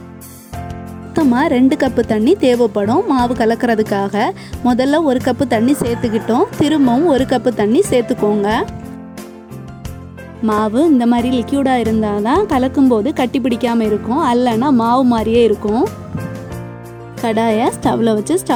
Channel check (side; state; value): both; identical; correlation 1.00